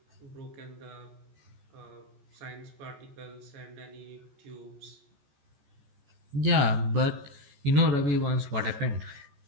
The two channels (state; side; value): late; left; 14 ms